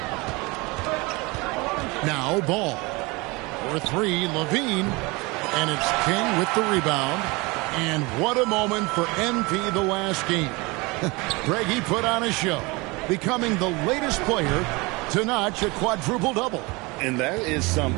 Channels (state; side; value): quieter; left; 25.1 dB